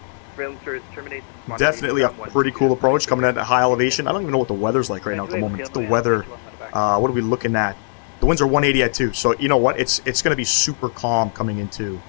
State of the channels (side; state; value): right; silent; digital silence